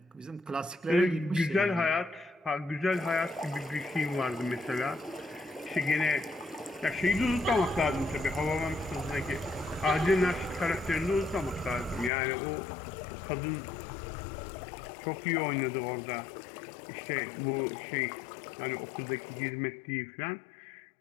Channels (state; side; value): drops out; right; at 12.1 s